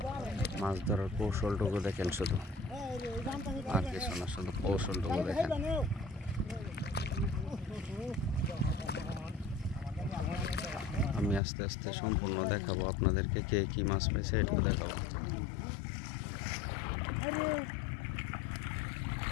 মাছ ধরার কৌশলটুকু দেখেন, শুধু আর কিছু না, শুধু কৌশলটুকু দেখেন। আমি আস্তে আস্তে সম্পূর্ণ দেখাবো আপনাদেরকে, কে কি মাছ পাইছে এটুকু দেখাবো।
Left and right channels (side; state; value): right; drops out; at 11.4 s